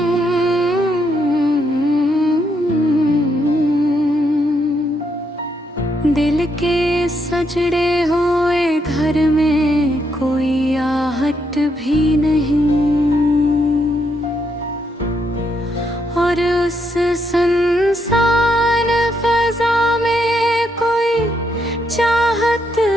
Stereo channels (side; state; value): both; normal; correlation 0.77